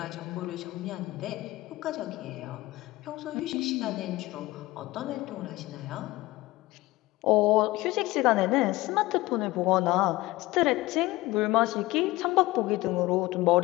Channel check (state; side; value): quieter; right; 19.1 dB